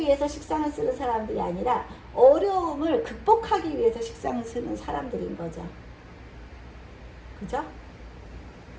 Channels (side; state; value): both; identical; correlation 1.00